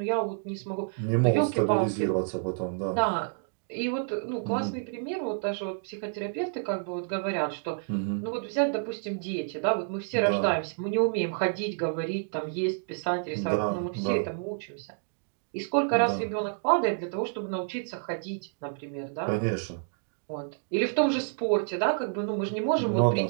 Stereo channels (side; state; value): left; silent; digital silence